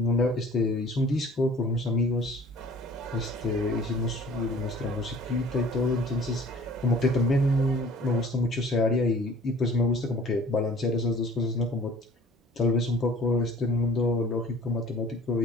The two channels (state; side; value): normal; both; correlation 0.49